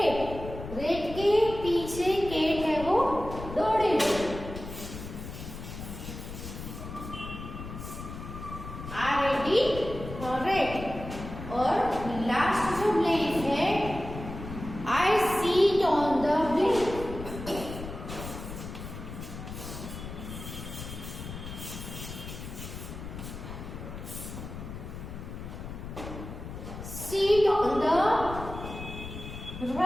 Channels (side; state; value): left; noise; rumble, 10 dB below the sound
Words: रेट के पीछे केट है वो दौड़ेगी। रेट। और लास्ट जो ब्लैंक है, I sit on the blank. Sit on the